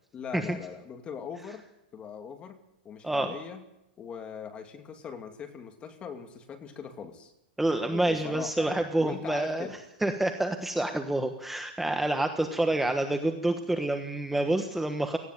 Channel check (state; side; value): normal; both; correlation 0.88